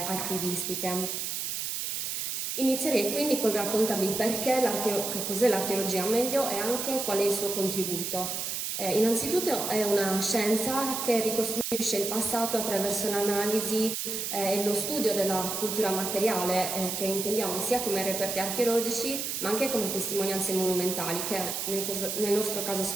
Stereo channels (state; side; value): noise; right; hiss, 3 dB below the sound